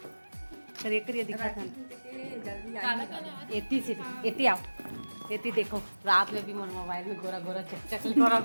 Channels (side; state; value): both; inverted; correlation -1.00